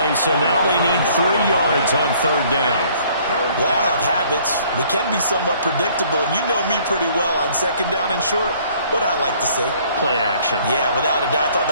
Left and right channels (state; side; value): inverted; both; correlation -0.59